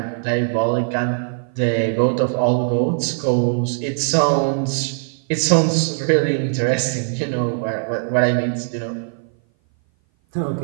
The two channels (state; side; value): silent; left; 58 dB below the other